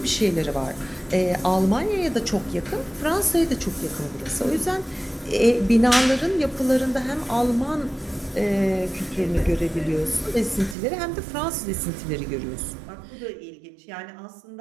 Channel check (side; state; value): left; drops out; at 10.8 s